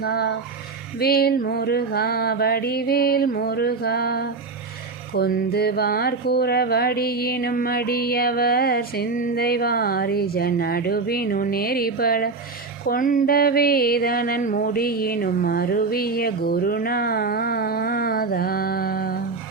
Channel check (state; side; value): quieter; left; 4.1 dB